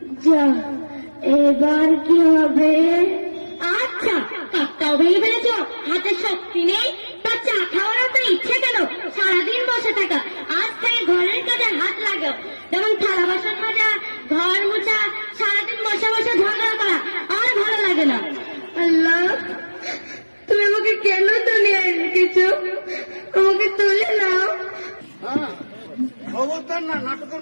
যা, এবার কি হবে? আচ্ছা, কাপটাও ভেঙে ফেলেছ, হাতে শক্তি নেই, তা চা খাওয়ার তো ইচ্ছে কেন? সারাদিন বসে থাকা, আজ থেকে ঘরের কাজে হাত লাগাও, যেমন থালা বাসন মাজা, ঘর মোছা, সারাদিন বসে বসে ঝগড়া করা আর ভালো লাগে না। আল্লাহ, তুমি আমাকে কেন দুনিয়ায় রেখেছো? আমাকে তুলে নাও। হ্যাঁ, খবরদার না, নাটকের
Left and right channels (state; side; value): inverted; both; correlation -1.00